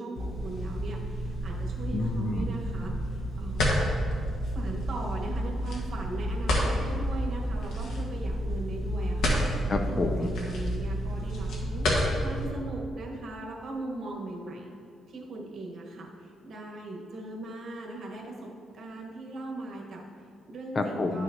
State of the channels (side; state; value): both; normal; correlation 0.79